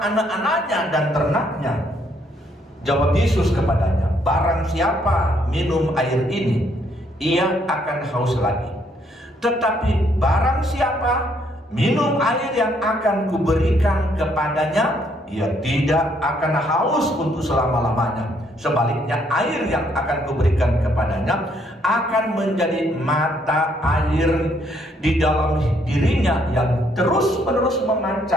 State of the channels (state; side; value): normal; both; correlation 0.69